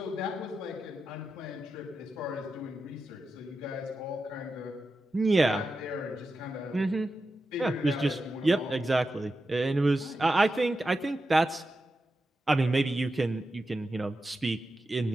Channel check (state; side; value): normal; both; correlation 0.90